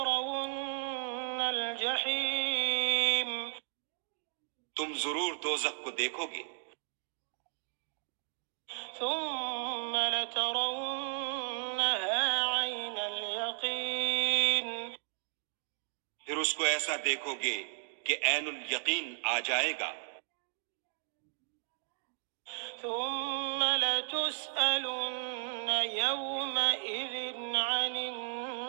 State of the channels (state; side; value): silent; left; digital silence